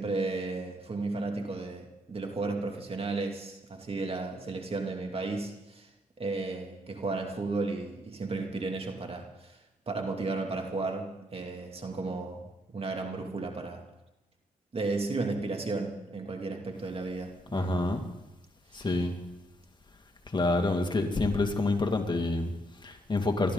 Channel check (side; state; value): both; normal; correlation 0.74